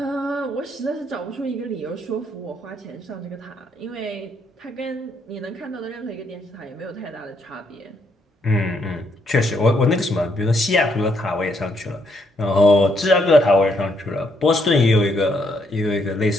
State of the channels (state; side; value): normal; both; correlation 0.74